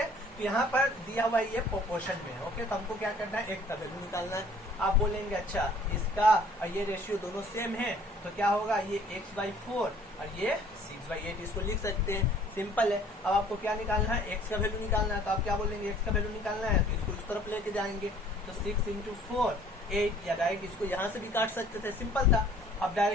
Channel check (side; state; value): both; normal; correlation 0.55